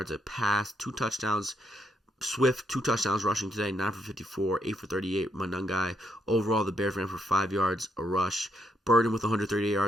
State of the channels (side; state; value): both; normal; correlation 0.76